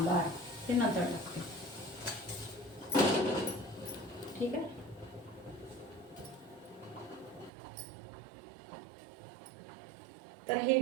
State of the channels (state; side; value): drops out; left; at 7.5 s